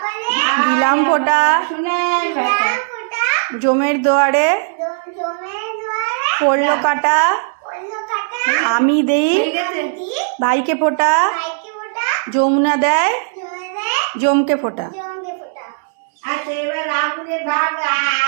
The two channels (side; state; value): left; silent; digital silence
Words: দিলাম ফোঁটা, সোনার বেটা, জমের দুয়ারে পড়লো কাটা, আমি দেই ভাইকে ফোঁটা, যমুনা দেয় জমকে ফোঁটা। আচ্ছা এবার আগুনের ভাগ